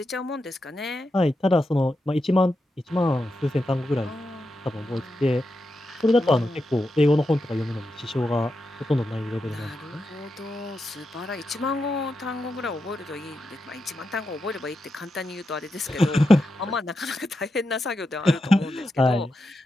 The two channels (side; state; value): both; normal; correlation 0.87